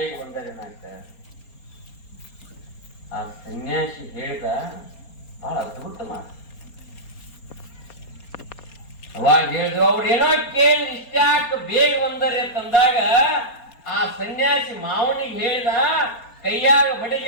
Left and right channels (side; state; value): right; late; 4.3 ms